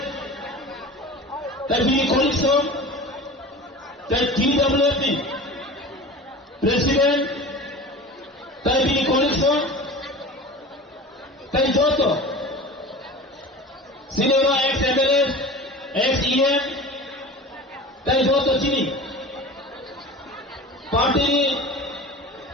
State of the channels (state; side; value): normal; both; correlation 0.35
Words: Tai Bini Coalition Tai TWP President Tai Bini Coalition Tai joto Sinema ex-MLS ex-EM Tai joto sini party